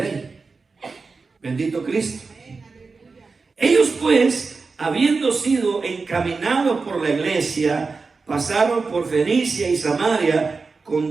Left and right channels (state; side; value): quieter; left; 4.4 dB